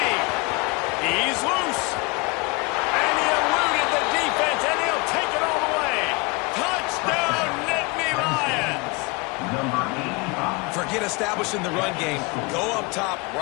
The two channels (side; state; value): right; quieter; 27.6 dB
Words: He's loose. And he eluded the defense, and he'll take it all the way. Touchdown, Nittany Lions. Forget establishing the run game. Go up top